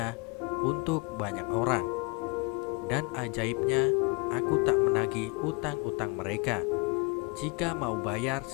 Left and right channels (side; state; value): right; quieter; 30.6 dB